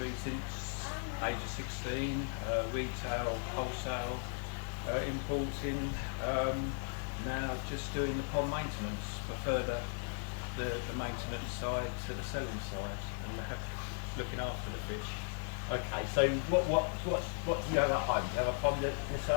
since age of 16, retail, wholesale, importing, now just doing the pond maintenance, prefer the maintenance side to the selling side, and looking after the fish. Okay, so what do you have at home? Do you have a pond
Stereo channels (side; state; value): right; silent; 53 dB below the other